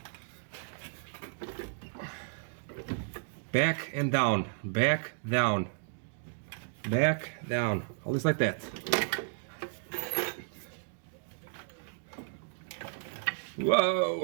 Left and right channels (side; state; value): left; silent; digital silence